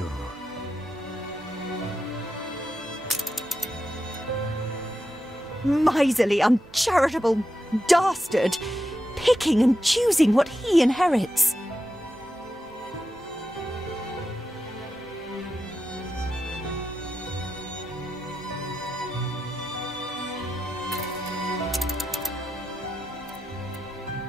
Miserly, uncharitable dastard! Picking and choosing what he inherits.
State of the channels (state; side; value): noise; right; hum, 24 dB below the sound